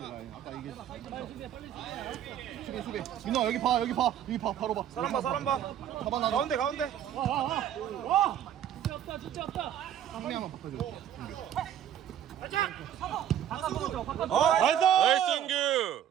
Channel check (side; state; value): left; quieter; 10.4 dB